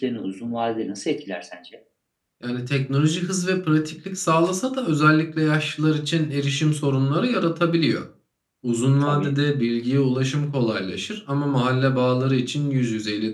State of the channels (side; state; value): both; identical; correlation 1.00